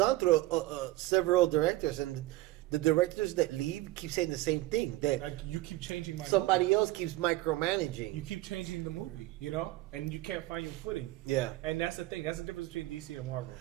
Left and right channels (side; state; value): left; quieter; 17.8 dB